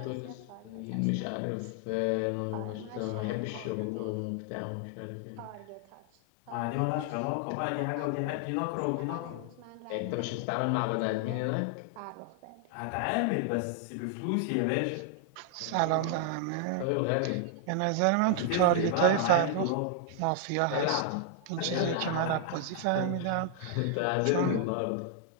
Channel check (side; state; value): both; different; correlation 0.00